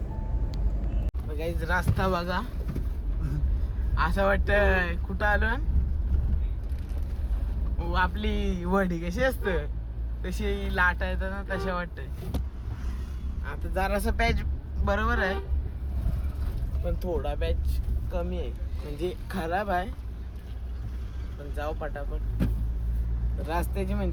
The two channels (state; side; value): identical; both; correlation 1.00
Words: काहीच रस्ता बघा. असं वाटतं कुठं आलो आपली वडी कशी असतं तशी लाटा येतात ना तशा वाटत. आता जरासा पॅच बरोबर आहे पण थोडा पॅच कमी आहे म्हणजे खराब आहे. पण जाऊ पटापट. रस्त्याची